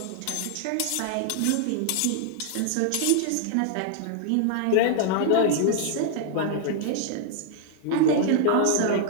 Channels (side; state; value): both; different; correlation 0.00